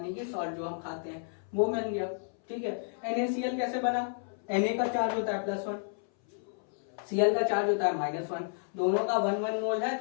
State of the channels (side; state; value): right; silent; 57 dB below the other